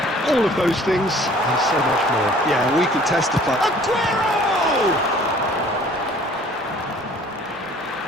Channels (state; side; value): normal; both; correlation 0.53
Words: all of those things and so much more. Yeah, we can testify. Aguero!